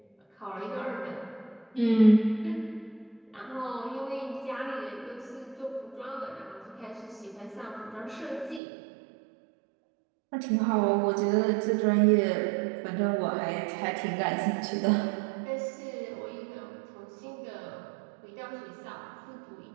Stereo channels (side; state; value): left; drops out; at 8.6 s